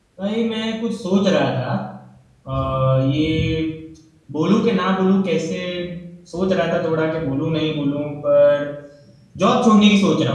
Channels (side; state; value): both; identical; correlation 1.00